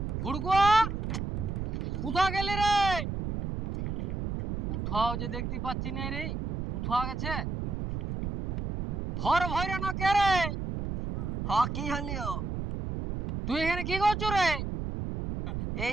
ভুড়কুয়া, কোথাও গেলি রে? কোথাও যে দেখতে পাচ্ছি না রে। কোথাও গেছে? ধর ভৈরা না কে রে? হ্যাঁ, কি হলিও? তুই এখানে কি করছো রে? এই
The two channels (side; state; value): right; noise; rumble, 3 dB below the sound